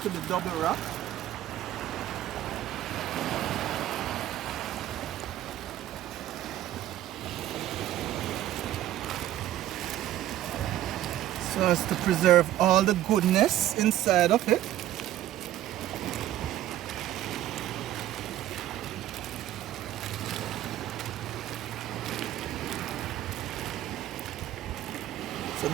to be double wrapped. So as to preserve all the goodness inside of it. So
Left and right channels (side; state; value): left; quieter; 13.2 dB